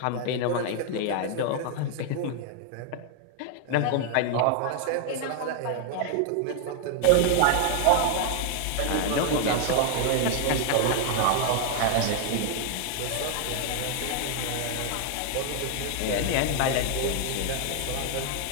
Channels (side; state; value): both; different; correlation 0.00